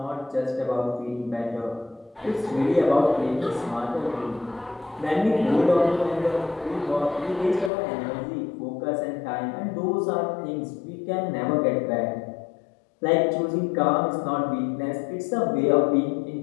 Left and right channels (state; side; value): drops out; right; at 7.7 s